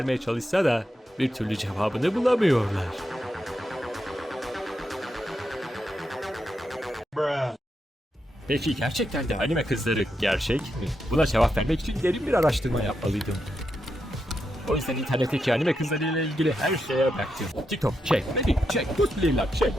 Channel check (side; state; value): both; normal; correlation 0.84